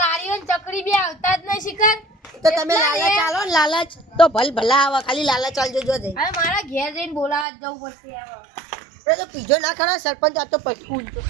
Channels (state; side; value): drops out; left; at 7.5 s